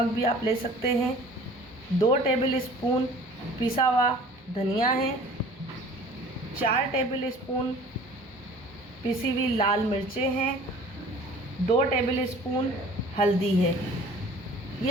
भी आप ले सकते हैं, 2 टेबल स्पून पिसा हुआ धनिया है, 4 टेबल स्पून पिसी हुई लाल मिर्चें हैं, 2 टेबल स्पून हल्दी है।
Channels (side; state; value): both; normal; correlation 0.48